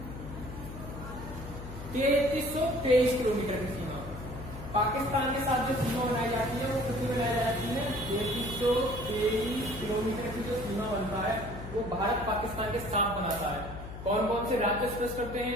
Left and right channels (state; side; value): noise; left; hum, 10 dB below the sound